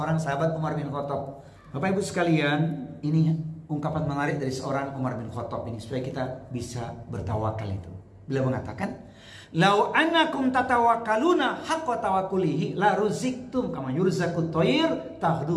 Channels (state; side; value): identical; both; correlation 1.00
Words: sahabat Umar bin Khattab. Bapak Ibu sekalian, ini ungkapan menarik dari seorang Umar bin Khattab ini supaya kita bisa bertawakal itu. Beliau mengatakan, "Lau annakum tatawakkaluna haqqa tawakkulihi la ruziktum kama yurzaqut thair